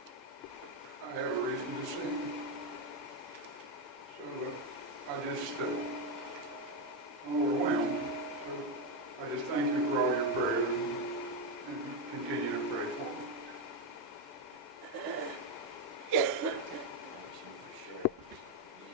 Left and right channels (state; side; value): normal; both; correlation 0.06